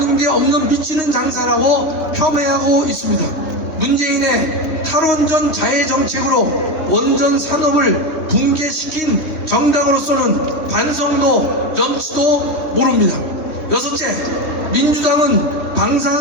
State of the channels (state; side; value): late; right; 3.2 ms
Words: 게 없는 미치는 장사라고 폄훼하고 있습니다. 문재인의 탈원전 자해 정책으로 원전 산업을 붕괴시킨 정당으로서는 반성도 염치도 모릅니다. 여섯째, 민주당은